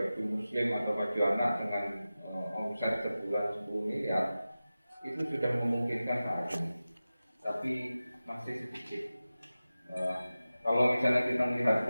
muslim atau baju anak dengan omset sebulan 10 miliar, itu sudah memungkinkan saat ini, tapi masih sedikit. Kalau misalnya kita melihat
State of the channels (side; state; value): both; inverted; correlation -0.95